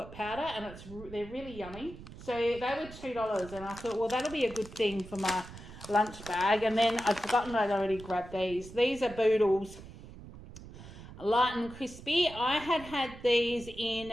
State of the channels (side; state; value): right; noise; rumble, 15 dB below the sound